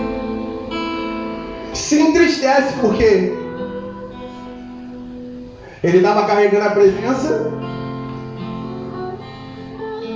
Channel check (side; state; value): both; identical; correlation 1.00